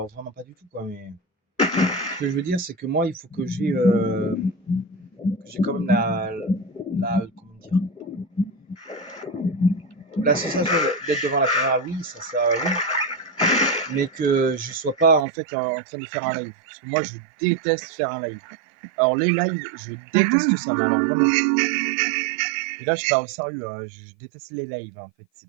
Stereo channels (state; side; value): drops out; left; at 15.2 s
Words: vraiment pas du tout, quoi. Mais ce que je veux dire, c'est que moi, il faut que j'ai quand même comment dire, la sensation d'être devant la caméra, oui, ça oui, mais que je sois pas en fait en train de faire un live. Parce que moi, je déteste faire un live. Alors les lives, je déteste ça, mais alors vraiment. Et là, je parle au sérieux, hein, je déteste les lives, en fait.